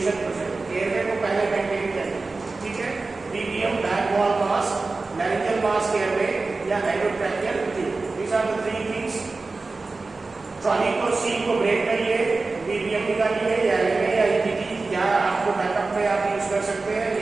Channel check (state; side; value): quieter; left; 3.7 dB